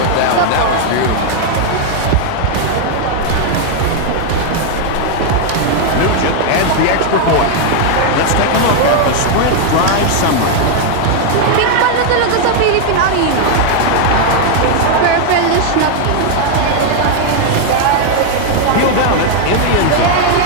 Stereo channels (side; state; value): both; different; correlation 0.00